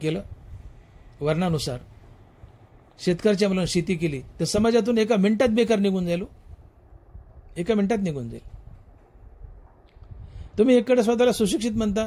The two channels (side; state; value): both; identical; correlation 1.00